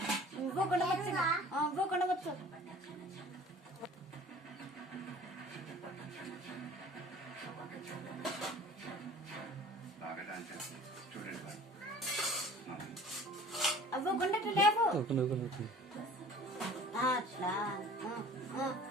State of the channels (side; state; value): both; normal; correlation 0.47